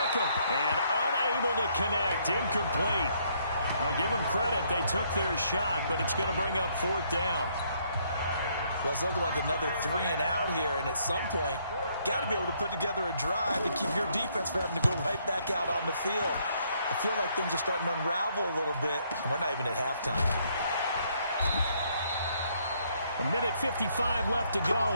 And unable to connect, incomplete. I'll give them credit, they took their shot, but it's going to bring up 4th down. Well, it's looking like another 3 and out here, and at some point, got to be able to put together a drive to keep your defense from having to go right back out on the field. I feel like things are starting to unravel a little bit, and we're not even at halftime. 1:55 left to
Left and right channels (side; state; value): both; inverted; correlation -0.69